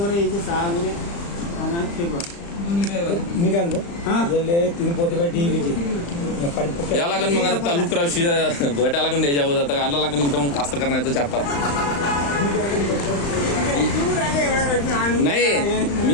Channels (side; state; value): right; late; 35 ms